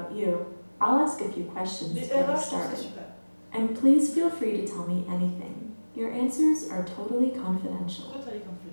you. I'll ask a few questions to get us started. And please feel free to tell me anything. Your answers are totally confidential.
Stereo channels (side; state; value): both; inverted; correlation -1.00